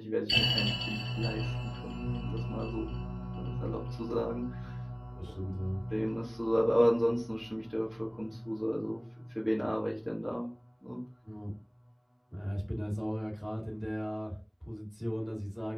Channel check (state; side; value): identical; both; correlation 1.00